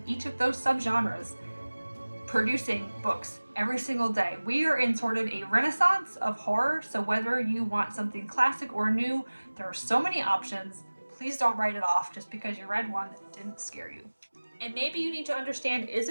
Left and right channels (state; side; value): inverted; both; correlation -1.00